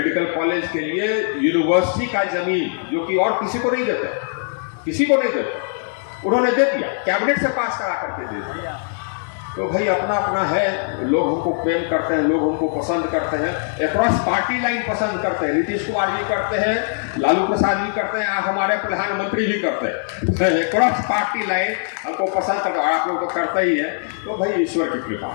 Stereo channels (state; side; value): silent; right; digital silence